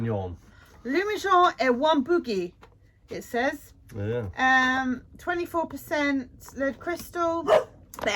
Lumijon et one bougie, it says. Yeah. 24% lead crystal.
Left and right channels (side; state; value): both; identical; correlation 1.00